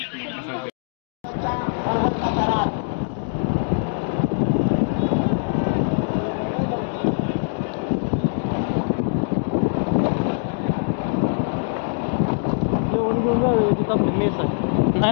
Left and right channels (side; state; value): right; silent; digital silence